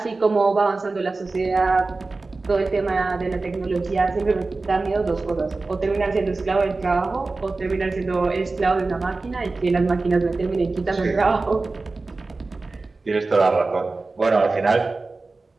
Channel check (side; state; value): left; quieter; 3.6 dB